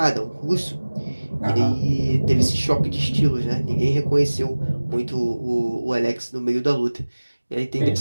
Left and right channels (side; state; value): both; inverted; correlation -1.00